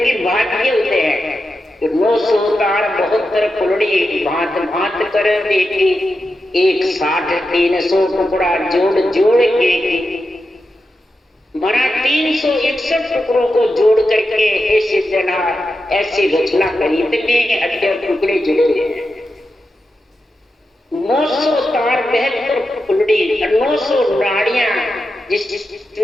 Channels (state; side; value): normal; both; correlation 0.89